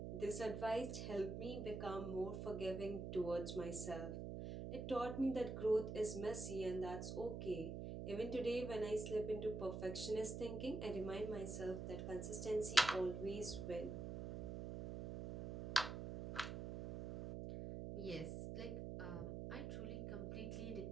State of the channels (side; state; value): right; noise; hum, 5 dB below the sound